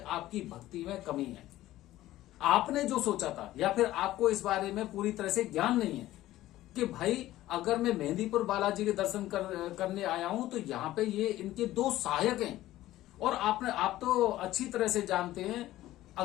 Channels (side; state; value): right; quieter; 15.2 dB